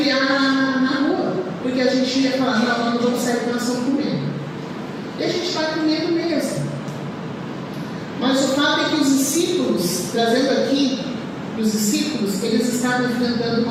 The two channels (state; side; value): identical; both; correlation 1.00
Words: na rua, porque a gente ia falar: não vamos sair com nação com medo. E a gente vai com medo mesmo. Mas o fato é que os discípulos, trazendo aqui os discípulos, eles estavam enfrentando